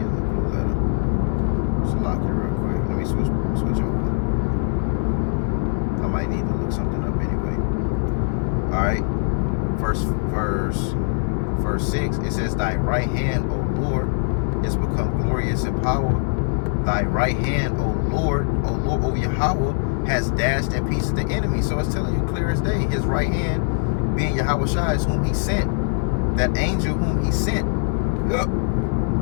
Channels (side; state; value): right; silent; 64 dB below the other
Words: a letter. Just lock it real quick. Let me switch over. I might need to look something up anyway. Alright. Verse 6, it says, thy right hand, O Lord, is become glorious in power. Thy right hand, O Lord, O Yahawah, has dashed in pieces the enemy. So it's telling you clear as day, his right hand being Yahawah is whom he sent. That angel whom he sent.